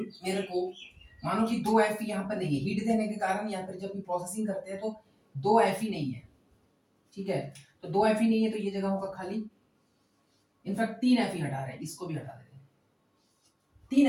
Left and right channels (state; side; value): identical; both; correlation 1.00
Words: को मानो कि दो Fe यहाँ पर नहीं है, हीट देने के कारण या फिर जब भी प्रोसेसिंग करते हैं तो दो Fe नहीं है, ठीक है, तो दो Fe नहीं है तो ये जगह होगा खाली, इनफैक्ट 3 Fe हटा रहे हैं, इसको भी हटा देते हैं,